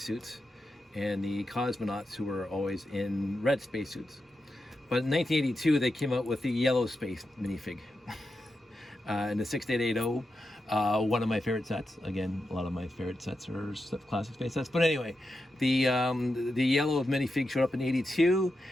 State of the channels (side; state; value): both; normal; correlation 0.88